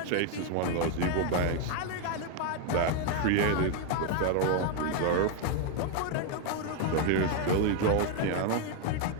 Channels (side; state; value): both; different; correlation 0.00